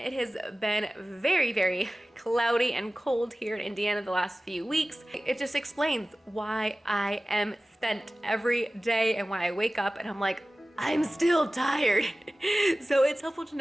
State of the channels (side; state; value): both; normal; correlation 0.97